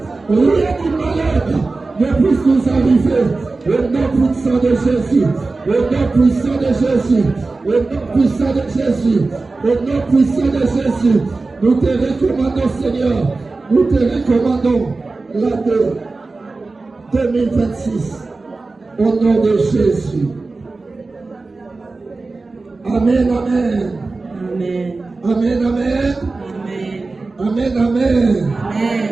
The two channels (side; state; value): left; quieter; 3.6 dB